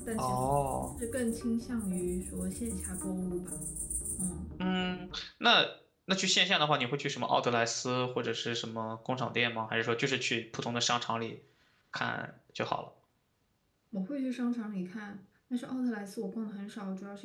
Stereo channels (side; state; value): both; identical; correlation 1.00